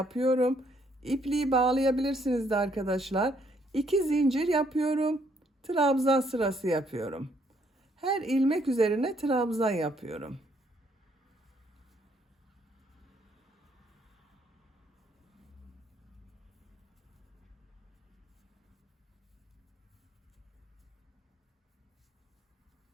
İpliği bağlayabilirsiniz de arkadaşlar. 2 zincir yapıyorum. Trabzan sırası yapıyorum. Her ilmek üzerine trabzan yapıyorum.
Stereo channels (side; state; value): both; normal; correlation 0.69